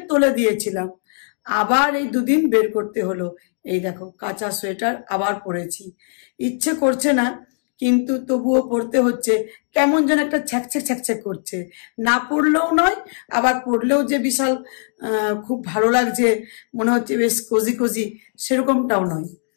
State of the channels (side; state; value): right; silent; digital silence